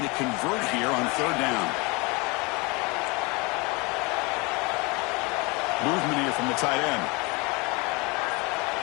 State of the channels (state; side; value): quieter; right; 27.2 dB